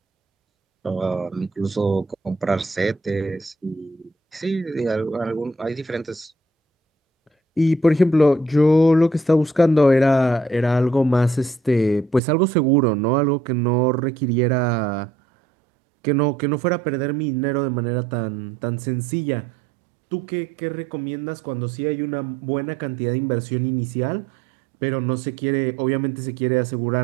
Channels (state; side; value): drops out; left; at 12.2 s